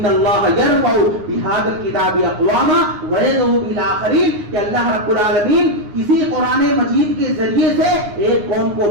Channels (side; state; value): left; late; 9.6 ms